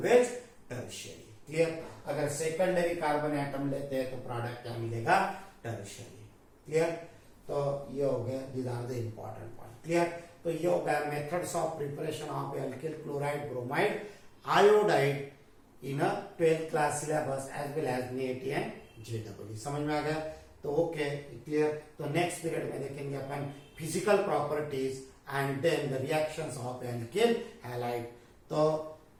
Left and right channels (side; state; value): both; identical; correlation 1.00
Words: tertiary. Clear. अगर सेकेंडरी कार्बन एटम लेते हैं तो प्रोडक्ट क्या मिलेगा टर्शियरी। क्लियर। तो ये हो गया, these are the important point. Clear. तो ये हो गया methods of preparation of alkyl chloride bromide iodide in a 12th class syllabus as well as NEET and JEE। समझ में आ गया। तो ओके क्लियर। तो नेक्स्ट पीरियड में देखेंगे अपन physical properties and then the reactions of alkyl halide. तो